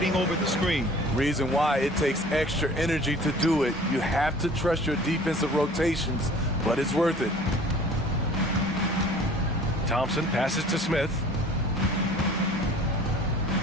over the screen. Reason why it takes extra energy to do it. You have to trust your defensive rotations, but it's worth it. Thompson passes to Smith.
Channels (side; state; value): both; normal; correlation 0.48